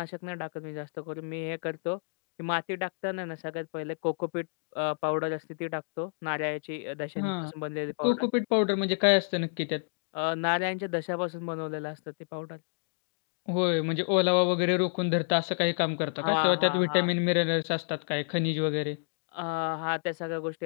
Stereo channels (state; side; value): silent; right; digital silence